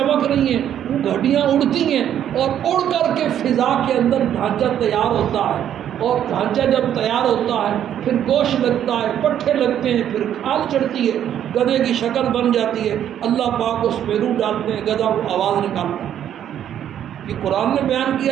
رہی ہیں، وہ ہڈیاں اڑتی ہیں اور اڑ کر کے فضا کے اندر ڈھانچہ تیار ہوتا ہے، اور ڈھانچہ جب تیار ہوتا ہے پھر گوشت لگتا ہے، پٹھے لگتے ہیں، پھر کھال چڑھتی ہے، گدھے کی شکل بن جاتی ہے، اللہ پاک اس میں روح ڈالتے ہیں، گدھا وہ آواز نکالتا ہے۔ یہ قرآن نے بیان کیا،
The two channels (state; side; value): quieter; left; 10.2 dB